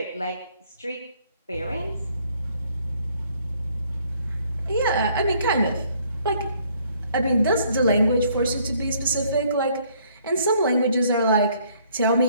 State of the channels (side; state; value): both; inverted; correlation -0.64